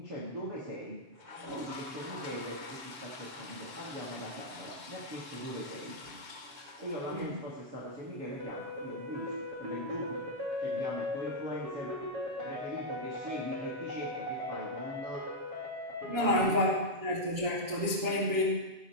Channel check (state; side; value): late; left; 7.4 ms